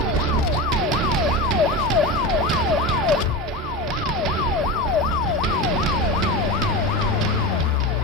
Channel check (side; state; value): both; normal; correlation 0.23